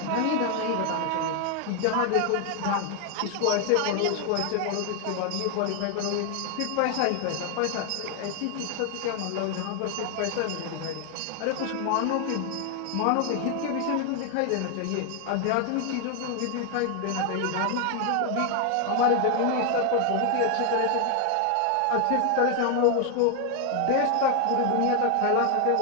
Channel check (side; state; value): both; different; correlation 0.00